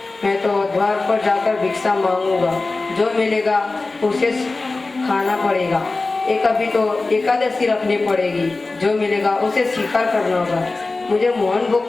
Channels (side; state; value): right; quieter; 3.5 dB